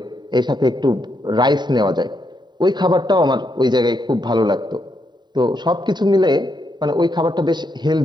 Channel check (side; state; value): left; late; 0.21 ms